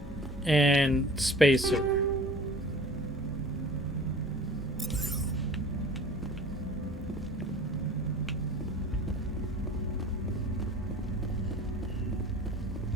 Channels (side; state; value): both; normal; correlation 0.44